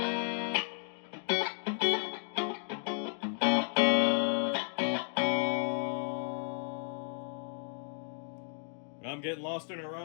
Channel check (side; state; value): right; silent; 55 dB below the other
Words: I'm getting lost in her